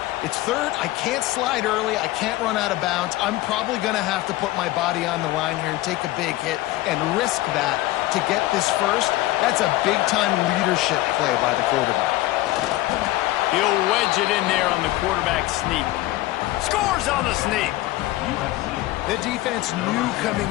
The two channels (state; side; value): quieter; right; 17.2 dB